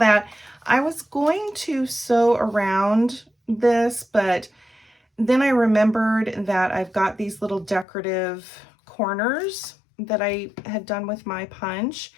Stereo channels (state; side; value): drops out; right; at 7.9 s